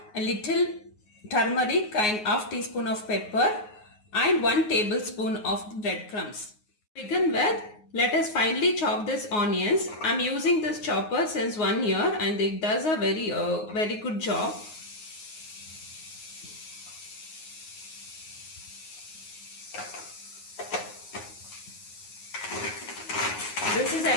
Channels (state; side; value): late; right; 9.5 ms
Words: a little turmeric and half teaspoon of pepper and 1 tablespoon of breadcrumbs. To begin with, let us finely chop this onions. I am using this chopper since 1 year and it does a very good job. This is